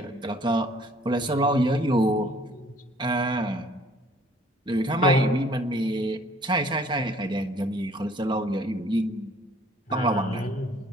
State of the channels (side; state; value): both; normal; correlation 0.57